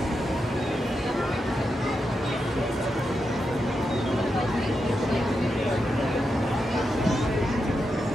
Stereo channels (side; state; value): both; normal; correlation 0.86